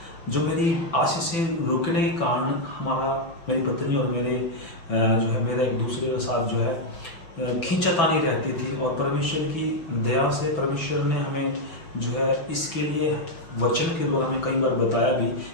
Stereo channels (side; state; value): right; late; 6.0 ms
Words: जो मेरी आशीषें रुकने के कारण मेरी पत्नी और जो है मेरा एक दूसरे के साथ जो है खींचातानी रहती थी। और परमेश्वर की दया से परमेश्वर ने हमें जो है इसके लिए वचन के द्वारा हमें कई बार बताया भी